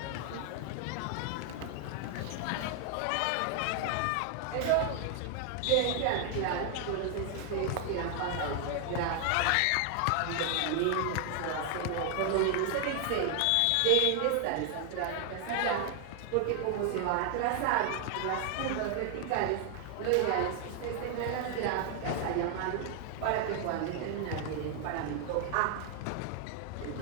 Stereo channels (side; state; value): both; different; correlation 0.00